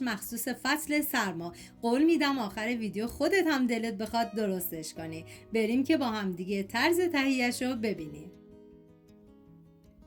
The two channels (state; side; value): identical; both; correlation 1.00